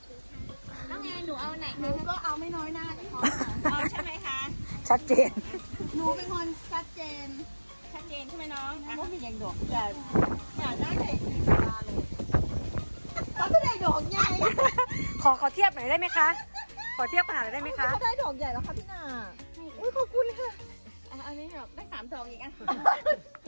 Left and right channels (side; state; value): both; inverted; correlation -1.00